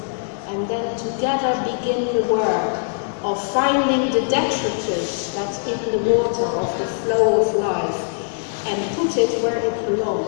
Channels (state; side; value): silent; right; digital silence